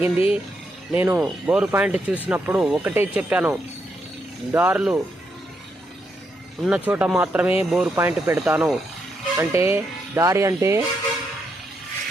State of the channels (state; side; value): normal; both; correlation 0.80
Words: నేను బోరు పాయింట్ చూసినప్పుడు ఒకటే చెప్పాను, దారులు ఉన్న చోట మాత్రమే బోరు పాయింట్ పెడతాను. అంటే దారి అంటే